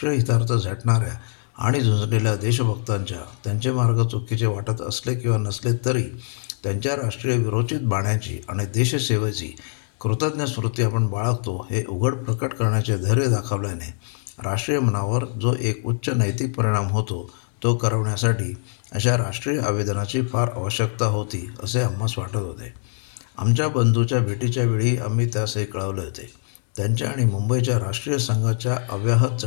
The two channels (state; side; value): silent; right; 63 dB below the other